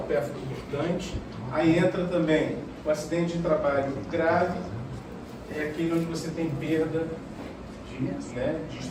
percutante. Aí entra também o acidente de trabalho grave, é aquele onde você tem perda de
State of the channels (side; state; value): both; identical; correlation 1.00